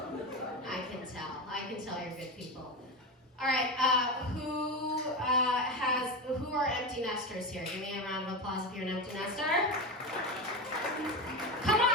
I can tell you're good people. All right, who are empty nesters here? Give me a round of applause if you're an empty nester. Come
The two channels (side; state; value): both; normal; correlation 0.19